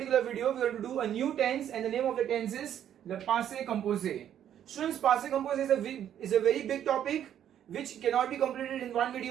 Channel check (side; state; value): left; quieter; 10.2 dB